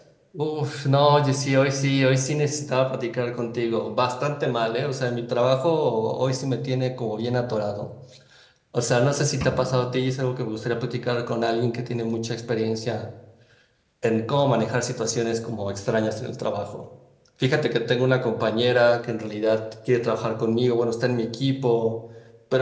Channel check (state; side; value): identical; both; correlation 1.00